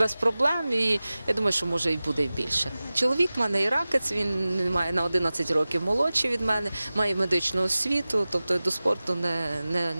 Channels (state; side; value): inverted; both; correlation -0.97